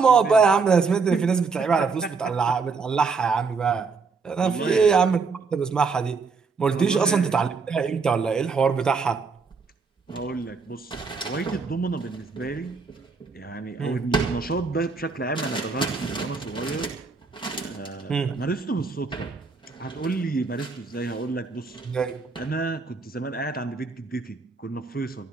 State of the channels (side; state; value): left; quieter; 4.8 dB